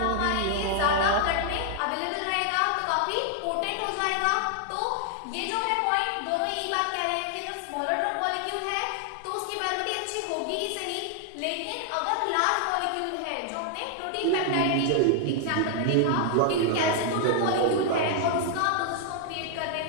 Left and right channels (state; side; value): different; both; correlation 0.00